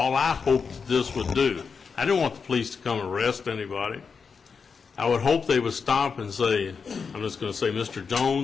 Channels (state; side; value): quieter; right; 5.6 dB